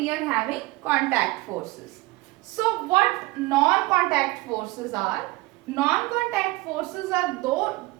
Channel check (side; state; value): left; quieter; 21.0 dB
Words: are having contact forces. So what non-contact forces are? Non-contact forces are